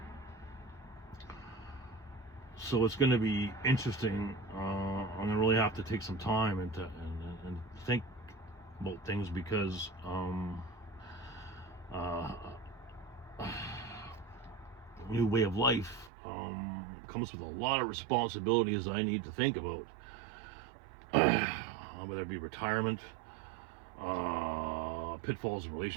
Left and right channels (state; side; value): drops out; left; at 16.1 s